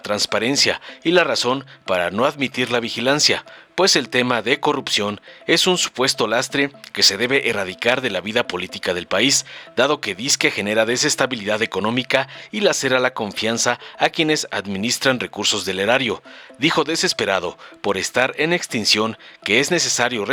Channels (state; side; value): identical; both; correlation 1.00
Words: y la razón para no admitir la vigilancia, pues el tema de corrupción es un supuesto lastre que se debe erradicar de la vida política del país, dado que disque genera desestabilidad económica y lacera la confianza a quienes administran recursos del erario. Dijo desesperado por estar en extinción que es necesario